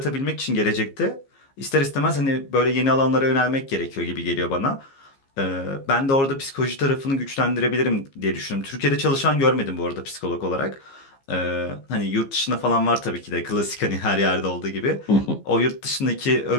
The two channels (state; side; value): late; right; 15 ms